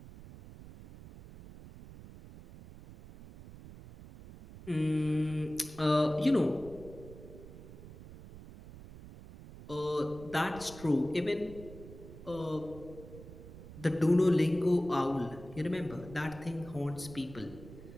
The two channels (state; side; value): noise; right; rumble, 16 dB below the sound